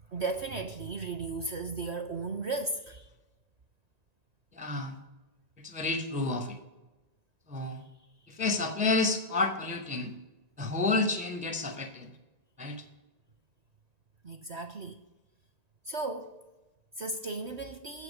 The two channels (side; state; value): left; late; 1.9 ms